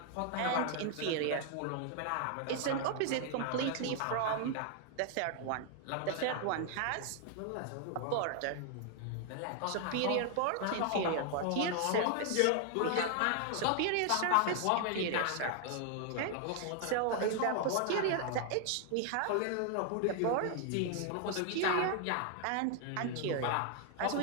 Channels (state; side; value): different; both; correlation 0.00